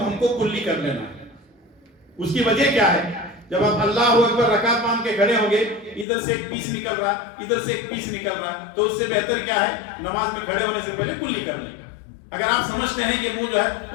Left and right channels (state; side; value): drops out; right; at 6.1 s